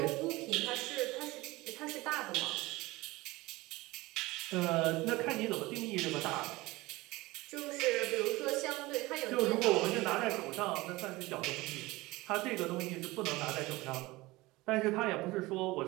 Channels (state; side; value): quieter; left; 20.6 dB